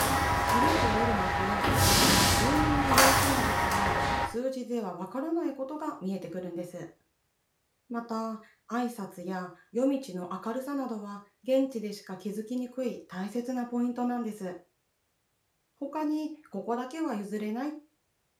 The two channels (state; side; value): identical; both; correlation 1.00